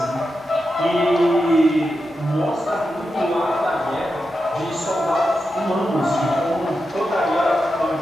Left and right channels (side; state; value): both; normal; correlation 0.89